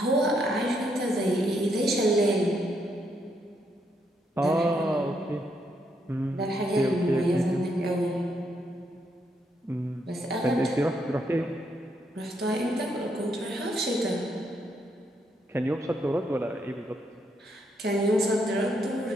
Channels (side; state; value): both; normal; correlation 0.77